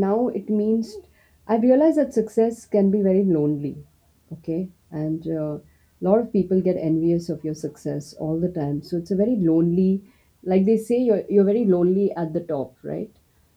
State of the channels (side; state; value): both; identical; correlation 1.00